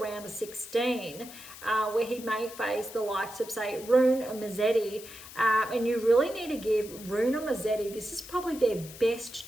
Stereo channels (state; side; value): noise; left; hiss, 15 dB below the sound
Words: of 16, where he may face the likes of, say, Rune or Musetti. And you really need to give Rune or Musetti, this is probably their best